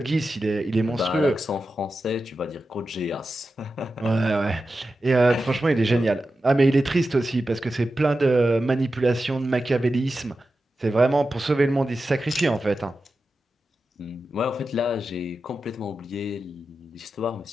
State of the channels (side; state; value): both; normal; correlation 0.92